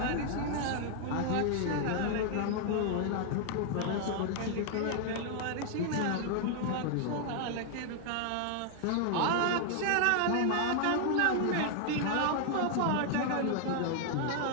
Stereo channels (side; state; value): both; different; correlation 0.00